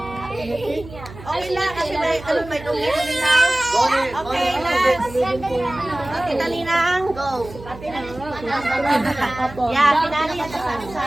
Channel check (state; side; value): noise; right; hum, 16 dB below the sound